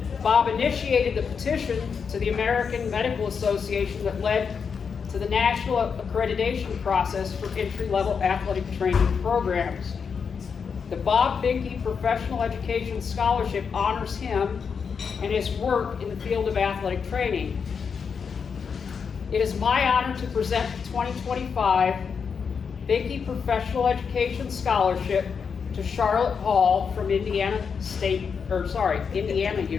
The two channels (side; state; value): right; quieter; 6.1 dB